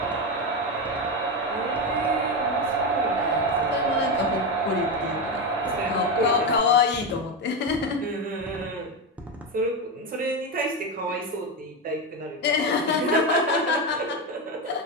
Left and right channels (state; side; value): normal; both; correlation 0.13